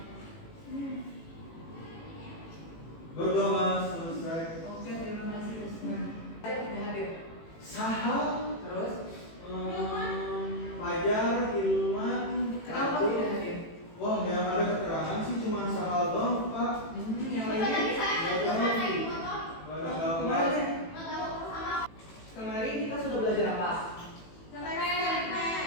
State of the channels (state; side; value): late; right; 18 ms